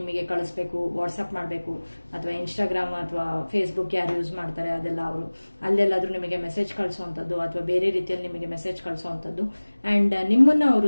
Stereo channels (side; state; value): both; inverted; correlation -1.00